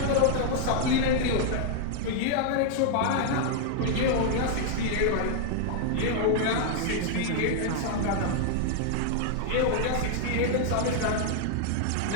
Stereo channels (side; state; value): both; different; correlation 0.00